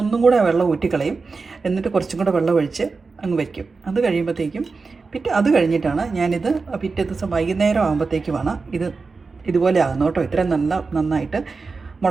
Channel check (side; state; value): left; quieter; 4.4 dB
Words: ഒന്നും കൂടെ വെള്ളം ഊറ്റിക്കളയും, എന്നിട്ട് കുറച്ചും കൂടെ വെള്ളം ഒഴിച്ച് അങ്ങ് വയ്ക്കും. അത് കഴിയുമ്പോഴത്തേക്കും അത് കഴിഞ്ഞിട്ടാണ് ഞാനിത് പിറ്റേ ദിവസം വൈകുന്നേരം ആകുമ്പോഴത്തേക്കുമാണ് ഇതുപോലെ ആകുന്നു കേട്ടോ. ഇത്രയും നന്നായിട്ട്